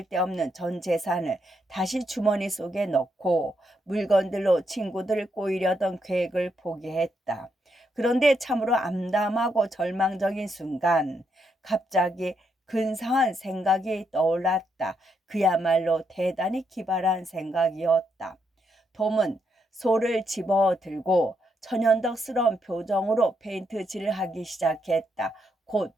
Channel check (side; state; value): both; normal; correlation 0.79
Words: 데 없는 전 재산을 다시 주머니 속에 넣고 물건들로 친구들을 꼬이려던 계획을 포기했다. 그런데 참으로 암담하고 절망적인 순간 갑자기 근사한 생각이 떠올랐다. 그야말로 대단히 기발한 생각이었다. 톰은 소를 집어들고 천연덕스러운 표정으로 페인트칠을 하기 시작했다. 곧